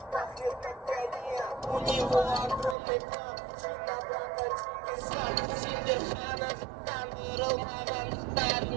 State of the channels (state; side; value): drops out; left; at 2.8 s